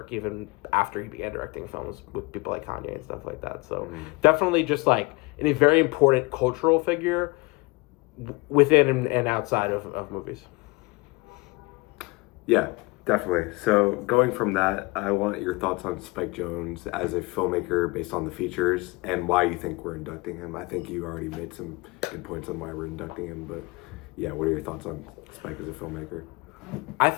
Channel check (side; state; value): right; quieter; 25.6 dB